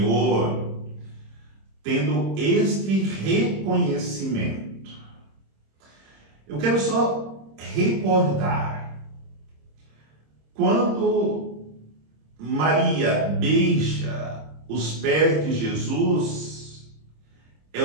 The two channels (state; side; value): late; left; 26 ms